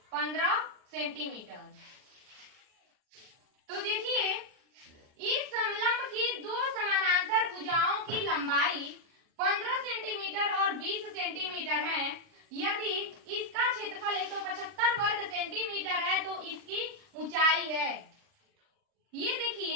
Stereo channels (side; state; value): left; late; 39 ms